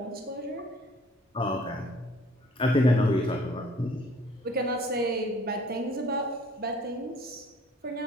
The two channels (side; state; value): both; normal; correlation 0.55